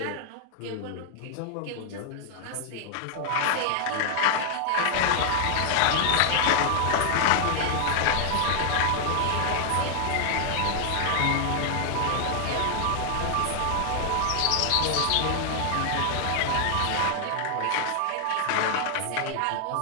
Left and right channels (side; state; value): both; different; correlation 0.00